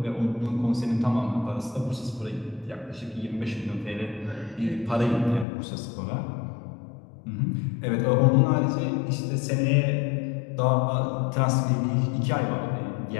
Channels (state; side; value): drops out; right; at 5.5 s